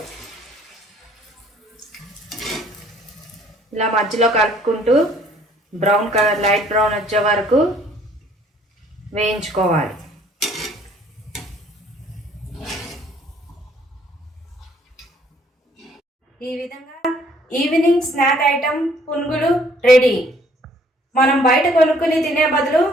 ఇలా మధ్యలో కలుపుకుంటూ బ్రౌన్ కలర్, లైట్ బ్రౌన్ వచ్చే వరకు వేయించుకోవాలి. ఈ విధంగా ఈవినింగ్ స్నాక్ ఐటమ్ పునుగులు రెడీ. మనం బయట కొనుక్కుని తినే బదులు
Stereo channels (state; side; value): normal; both; correlation 0.61